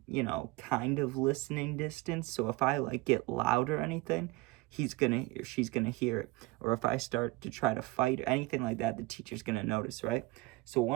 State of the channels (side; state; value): left; quieter; 21.3 dB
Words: kind of listening distance. So if I like get loud or anything, she's gonna hear it. Or if I start to try to fight or anything like that, the teacher's gonna notice, right? So